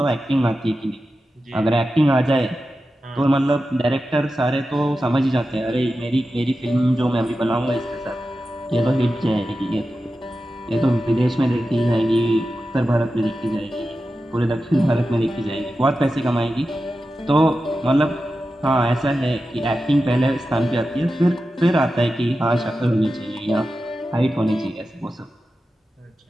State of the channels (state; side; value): normal; both; correlation 0.92